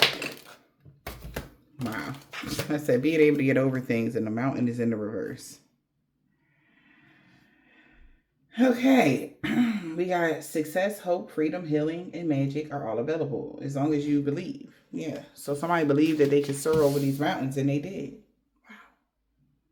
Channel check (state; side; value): identical; both; correlation 1.00